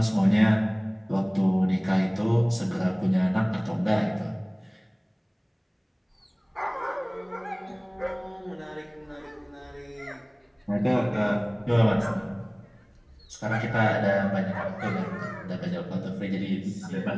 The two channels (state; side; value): identical; both; correlation 1.00